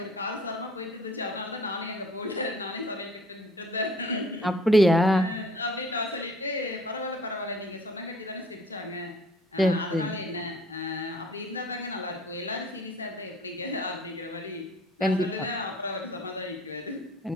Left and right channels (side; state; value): both; normal; correlation 0.53